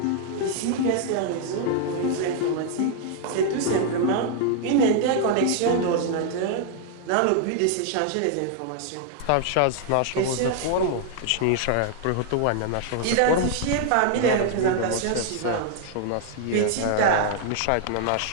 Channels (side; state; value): both; different; correlation 0.00